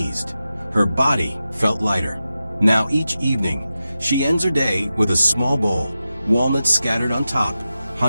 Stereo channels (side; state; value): both; inverted; correlation -0.92